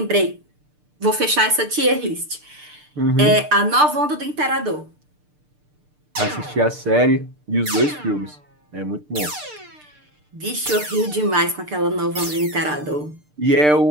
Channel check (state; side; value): late; left; 6.7 ms